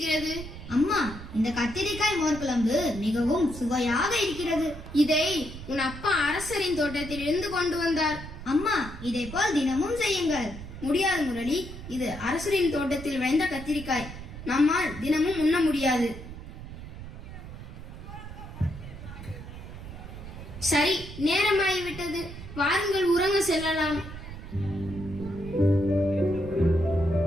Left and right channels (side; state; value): right; noise; rumble, 12 dB below the sound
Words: அம்மா, இந்த கத்திரிக்காய் மோர்குழம்பு மிகவும் சுவையாக இருக்கிறது. இதை உன் அப்பா அரசரின் தோட்டத்தில் இருந்து கொண்டு வந்தார். அம்மா, இதை போல் தினமும் செய்யுங்கள். முடியாது முரளி, இது அரசரின் தோட்டத்தில் விளைந்த கத்திரிக்காய். நம்மால் தினமும் உண்ண முடியாது. சரி, நேரமாகிவிட்டது. வாருங்கள், உறங்க செல்லலாம்.